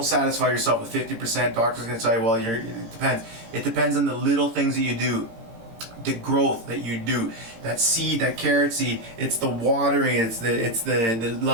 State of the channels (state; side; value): late; left; 18 ms